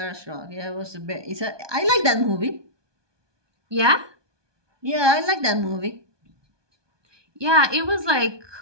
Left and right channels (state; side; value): late; left; 1.2 ms